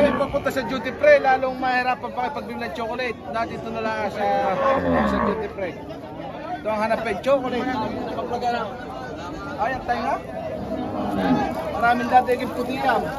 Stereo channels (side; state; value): both; identical; correlation 1.00